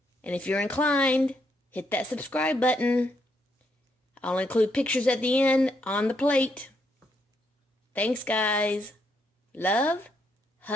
And if you're inclined, hit that subscribe button. I'll include pictures at the end on the plate. Thanks, guys. Love,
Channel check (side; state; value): both; normal; correlation 0.76